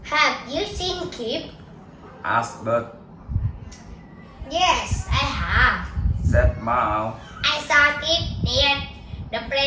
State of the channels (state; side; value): identical; both; correlation 1.00